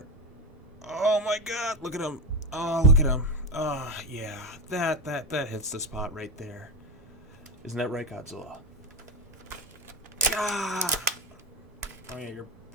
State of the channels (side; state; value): both; normal; correlation 0.15